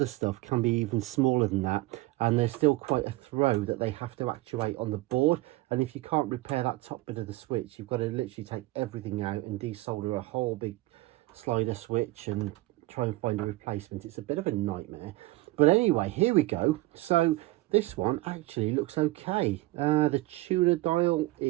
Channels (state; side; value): quieter; left; 19.6 dB